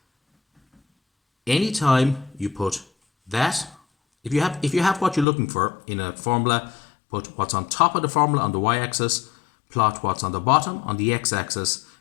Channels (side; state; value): right; drops out; at 5.2 s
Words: Anytime you put that, if you have what you're looking for in a formula, put what's on top of the formula on the y-axis, plot what's on the bottom on the x-axis.